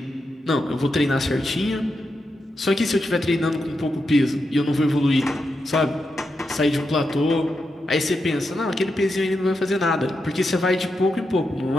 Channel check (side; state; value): both; normal; correlation 0.86